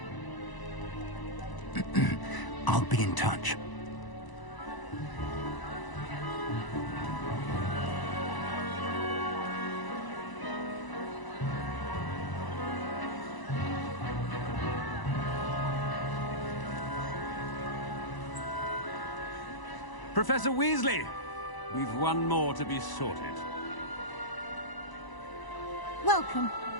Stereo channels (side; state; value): right; late; 1.0 ms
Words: I'll be in touch. Professor Weasley, we've one more to be sorted. Welcome.